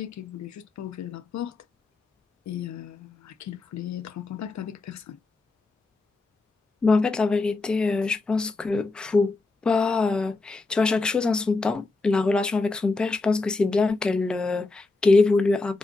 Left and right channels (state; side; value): quieter; right; 3.5 dB